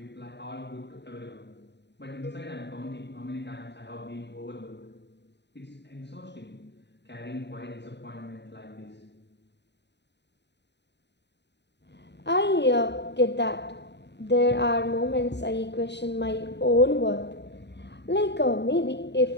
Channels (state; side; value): late; right; 0.50 ms